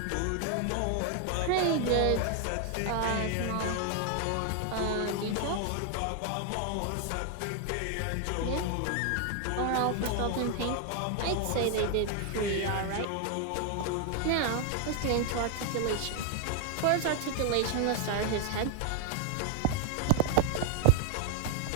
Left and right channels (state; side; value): different; both; correlation 0.00